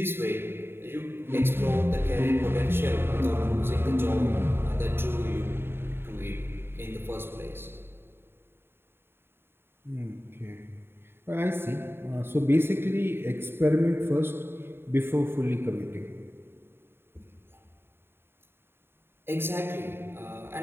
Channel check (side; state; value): left; late; 0.11 ms